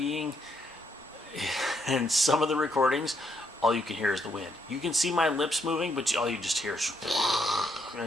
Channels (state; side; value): normal; both; correlation 0.75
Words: in some of the recordings, all you can hear is the wind. You can see my lips moving, but all you just hear is,